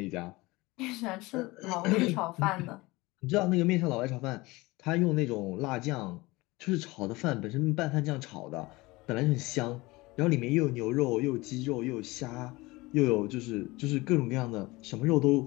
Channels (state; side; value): quieter; right; 21.9 dB